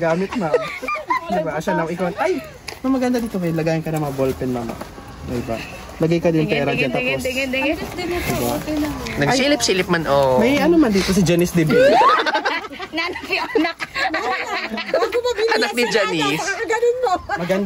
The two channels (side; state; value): both; identical; correlation 1.00